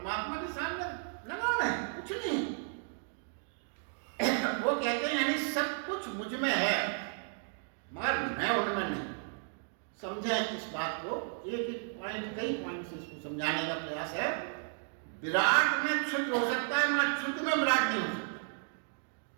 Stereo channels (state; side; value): silent; left; 55 dB below the other